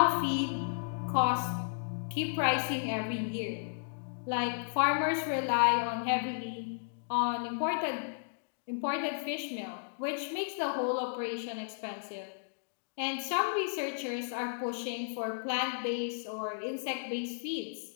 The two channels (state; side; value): silent; right; digital silence